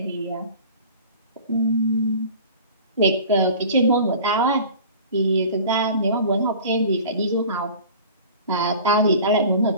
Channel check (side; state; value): both; inverted; correlation -0.42